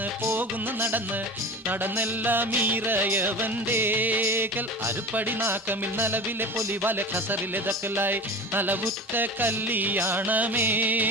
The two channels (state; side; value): normal; both; correlation 0.32